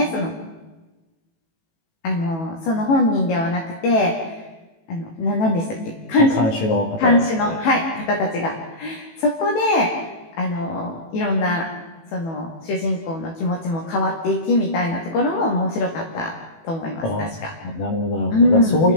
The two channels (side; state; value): right; late; 18 ms